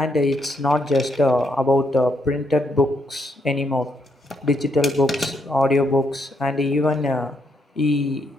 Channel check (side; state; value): both; normal; correlation 0.76